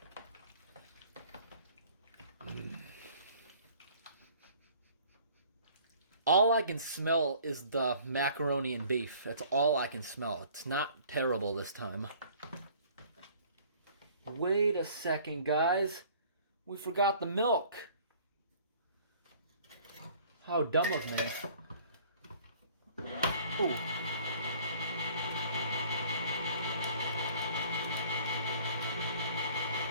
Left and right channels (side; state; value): both; inverted; correlation -0.53